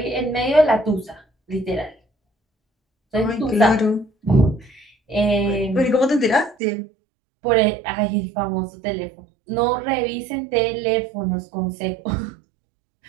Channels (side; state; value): left; drops out; at 6.6 s